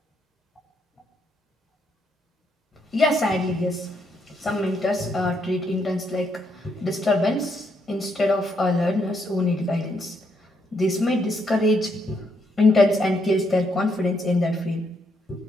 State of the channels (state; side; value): normal; both; correlation 0.76